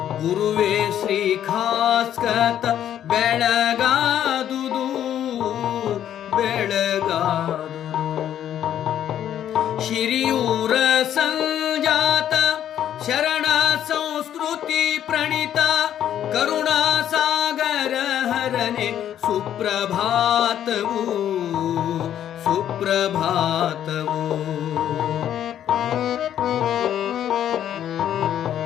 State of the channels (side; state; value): right; quieter; 10.6 dB